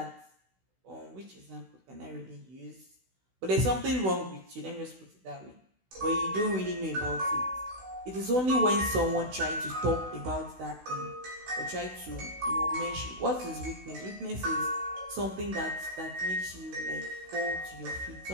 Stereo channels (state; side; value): late; left; 16 ms